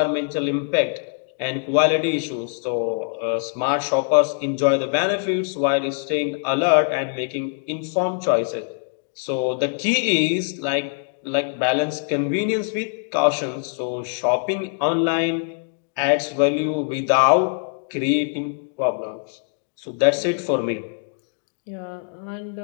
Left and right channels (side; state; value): right; silent; 63 dB below the other